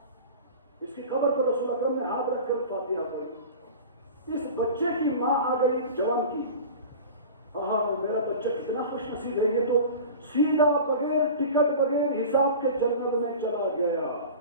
اس کی قبر پر رسول اکرم نے ہاتھ رکھ کر فاتحہ پڑھی. اس بچے کی ماں آ گئی جوان کی، میرا بچہ کتنا خوش نصیب ہے، یہ تو سیدھا بغیر ٹکٹ بغیر حساب کے جنت میں چلا گیا.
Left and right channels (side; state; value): both; inverted; correlation -0.35